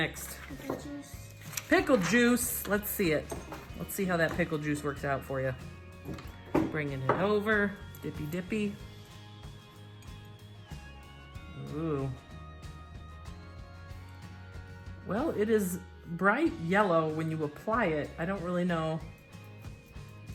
Pickle juice. Pickle juice. Let's see it. Let's see how that pickle juice works out for you. Bringing it over. Dippy dippy. Ooh. Well, it is bright yellow when you apply it. I don't really know.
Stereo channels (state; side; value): identical; both; correlation 1.00